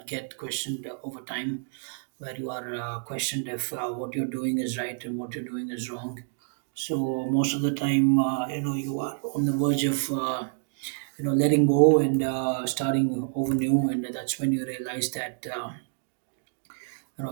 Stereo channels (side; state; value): left; silent; digital silence